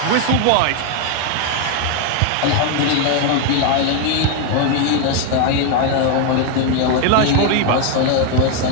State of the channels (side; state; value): both; different; correlation 0.00